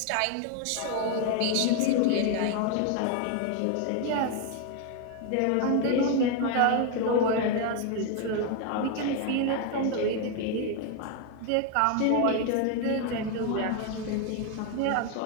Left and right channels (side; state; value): both; different; correlation 0.01